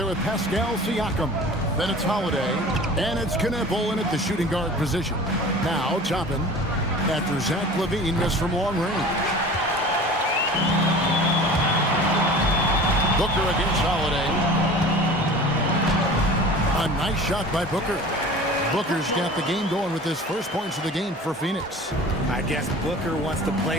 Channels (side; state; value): both; normal; correlation 0.40